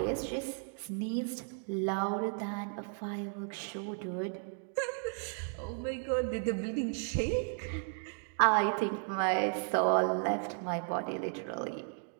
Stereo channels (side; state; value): left; silent; 55 dB below the other